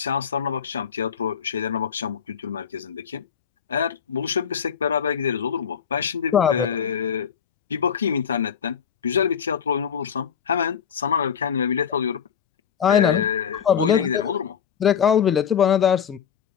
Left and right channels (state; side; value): quieter; right; 7.6 dB